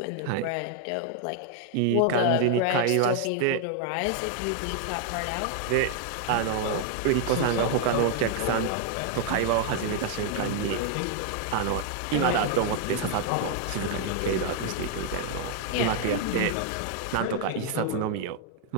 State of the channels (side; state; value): both; different; correlation 0.00